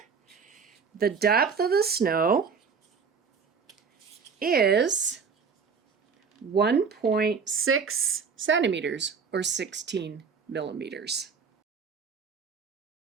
the depth of the snow is 1.6 centimeters, or 16 millimeters.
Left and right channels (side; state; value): left; quieter; 5.8 dB